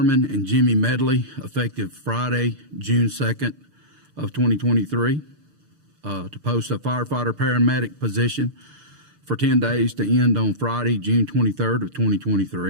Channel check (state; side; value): late; left; 6.7 ms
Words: and Jimmy Medley effective Friday, June 2nd of 2023. To post a firefighter paramedic position for 10 days to end on Friday, June 23rd of